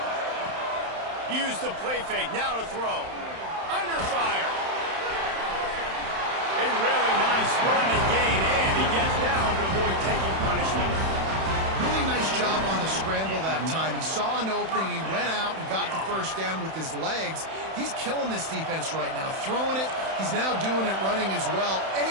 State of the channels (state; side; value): late; left; 31 ms